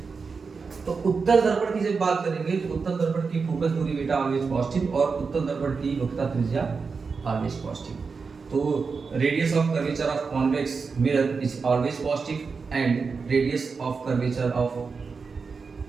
तो उत्तल दर्पण की जब बात करेंगे तो उत्तल दर्पण की फोकस दूरी बेटा ऑलवेज पॉजिटिव, और उत्तल दर्पण की वक्रता त्रिज्या ऑलवेज पॉजिटिव। तो radius of curvature of convex mirror is always positive, and radius of curvature of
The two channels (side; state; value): left; quieter; 5.0 dB